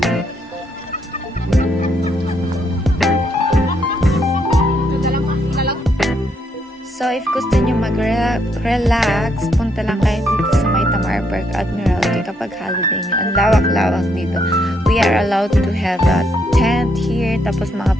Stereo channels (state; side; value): normal; both; correlation 0.74